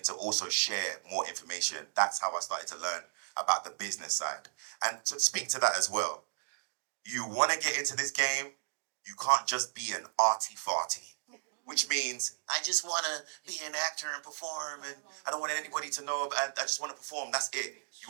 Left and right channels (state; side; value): silent; left; digital silence